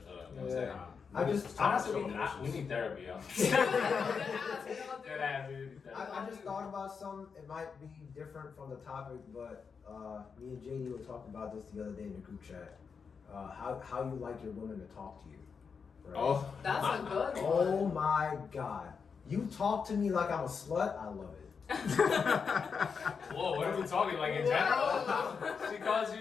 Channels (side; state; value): right; quieter; 5.8 dB